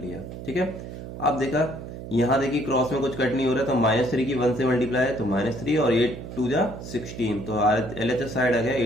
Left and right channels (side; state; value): right; noise; hum, 10 dB below the sound